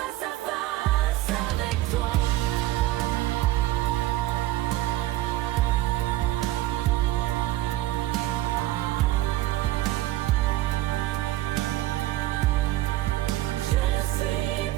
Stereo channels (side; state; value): left; quieter; 15.9 dB